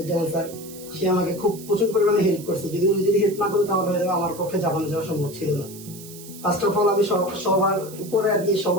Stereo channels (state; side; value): noise; right; hiss, 16 dB below the sound